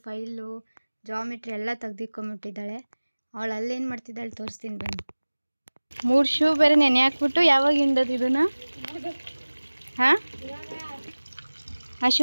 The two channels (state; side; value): inverted; both; correlation -1.00